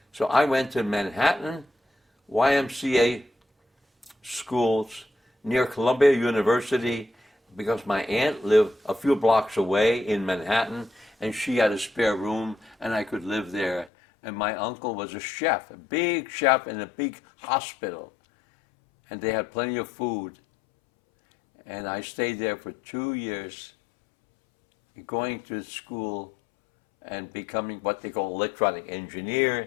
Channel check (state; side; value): drops out; right; at 13.9 s